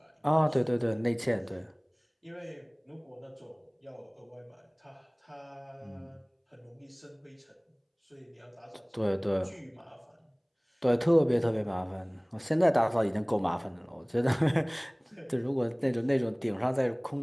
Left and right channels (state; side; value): identical; both; correlation 1.00